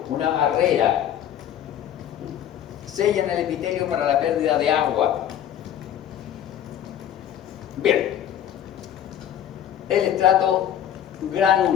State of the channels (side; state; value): right; quieter; 10.4 dB